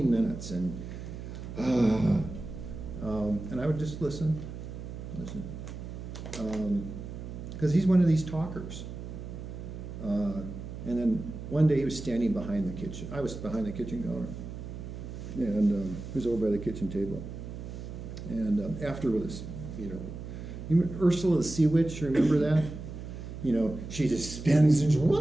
minutes, and I would just listen. Because he's one of these talkers. And then one day he was standing behind the kitchen. I was behind the kitchen counter. And he was over by the kitchen table. And after this, Ursula the Sea Witch, remember that? She just spins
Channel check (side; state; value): right; noise; hum, 9 dB below the sound